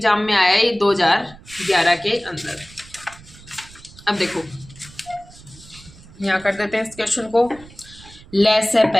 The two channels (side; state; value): right; noise; rumble, 21 dB below the sound